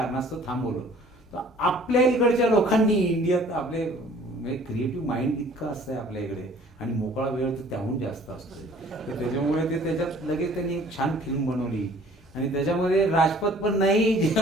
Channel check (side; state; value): both; normal; correlation 0.53